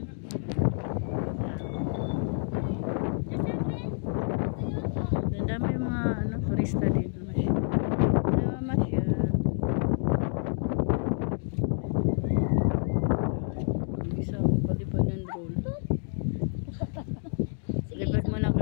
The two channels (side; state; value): right; silent; 59 dB below the other